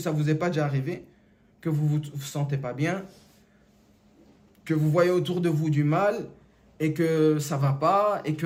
vous est pas déjà arrivé que vous vous sentez pas bien, que vous voyez autour de vous du mal et que ça va pas et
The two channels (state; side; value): identical; both; correlation 1.00